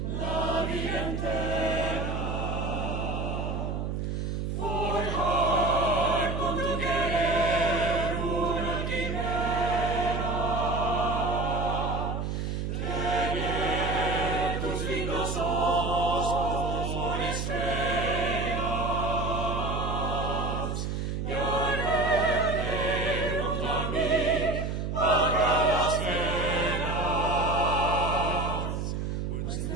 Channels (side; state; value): right; noise; hum, 2 dB below the sound